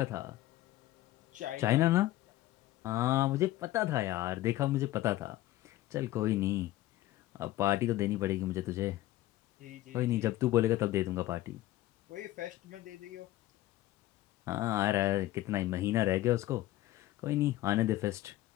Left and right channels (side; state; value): right; quieter; 15.6 dB